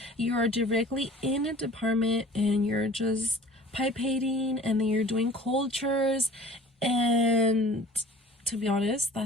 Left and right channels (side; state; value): both; normal; correlation 0.46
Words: You are directly in a department and you're just pipating, and then you're doing cultures, and to be honest,